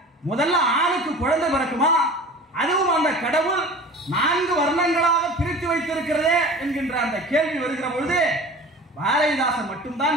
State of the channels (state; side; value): normal; both; correlation 0.40